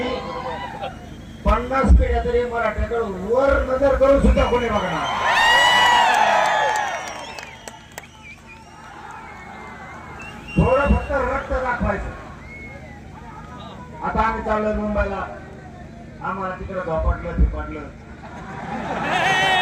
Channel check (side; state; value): both; identical; correlation 1.00